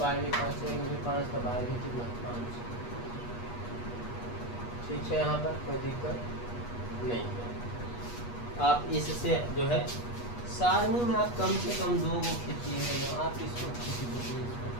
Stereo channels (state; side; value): late; right; 8.3 ms